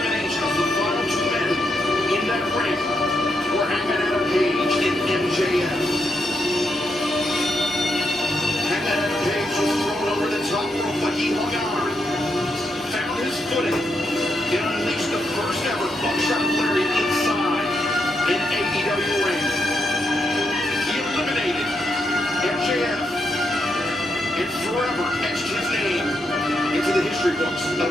the final two men in that ring were Hangman Adam Page and MJF. Hangman Adam Page was thrown over the top rope, but he hung on, found his footing, and unleashed the first ever buckshot lariat inside an AEW ring. He eliminated MJF and forever etched his name into the history books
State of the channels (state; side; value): normal; both; correlation 0.81